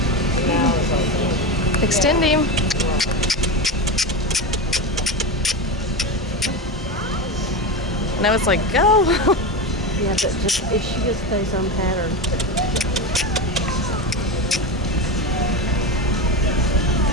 Extend him. Now it's like, go. Yeah, but just if she just stays on pattern.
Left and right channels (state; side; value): normal; both; correlation 0.19